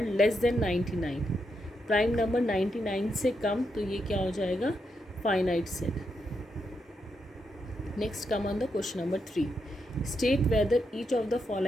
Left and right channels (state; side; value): normal; both; correlation 0.82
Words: less than 99। Prime number 99 से कम, तो ये क्या हो जाएगा, finite set. Next come on the question number 3। State whether each of the